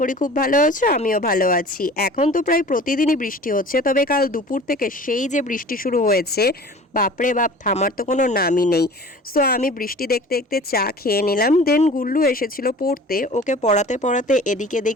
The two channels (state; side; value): normal; both; correlation 0.43